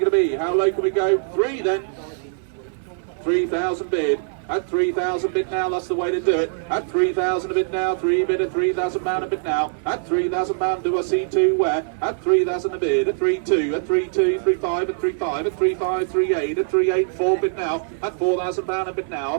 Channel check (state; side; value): silent; left; digital silence